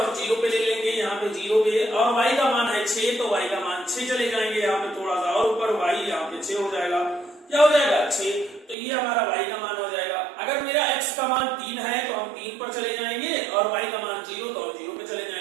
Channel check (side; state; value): left; drops out; at 8.8 s